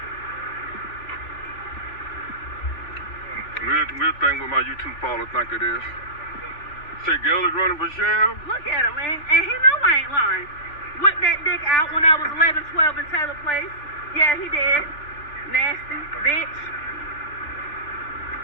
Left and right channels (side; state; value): right; late; 3.4 ms